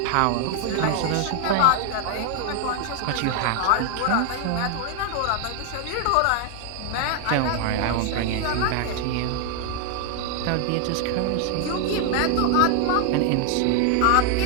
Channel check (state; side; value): different; both; correlation 0.00